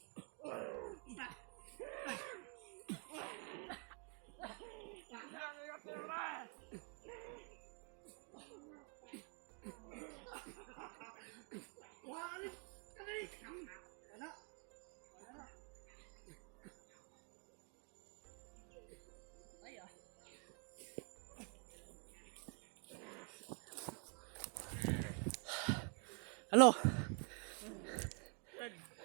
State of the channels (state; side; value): quieter; left; 39.0 dB